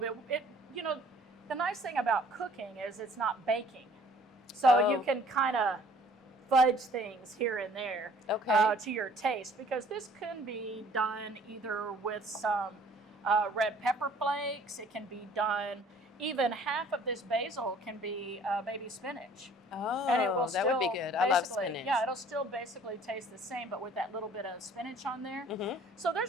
bit. The nice thing about cooking is it's not baking. So you can kind of fudge things here and there to your taste, because this can be done either with some red pepper flakes. It can be done, even half of this basil can be baby spinach. Oh, and it will that would be good. I love spinach. Yeah, it'll still basically taste the same, but with that little bit of spinach on there. So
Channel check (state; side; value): normal; both; correlation 0.55